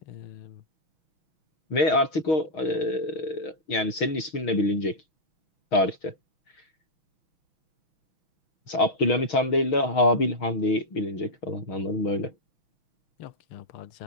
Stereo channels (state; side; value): late; right; 6.4 ms